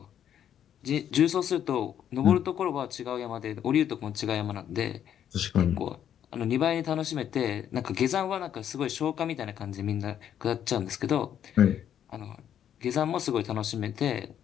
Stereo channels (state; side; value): quieter; right; 9.8 dB